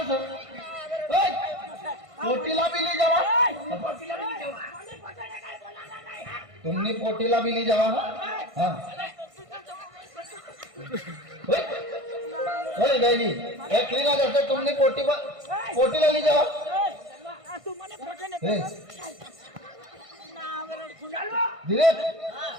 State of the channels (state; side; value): late; left; 1.5 ms